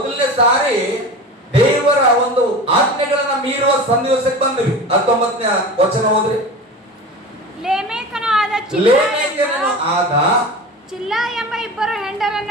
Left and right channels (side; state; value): both; normal; correlation 0.32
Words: ಸಾರಿ ದೇವರ ಒಂದು ಆಜ್ಞೆಗಳನ್ನ ಮೀರುವ ಸನ್ನಿವೇಶಕ್ಕೆ ಬಂದ್ರಿ. 19ನೇ ವಚನ ಹೋದ್ರಿ. ಲೇಮೆಕನು ಆದ ಚಿಲ್ಲ ಎಂಬ ಇಬ್ಬರು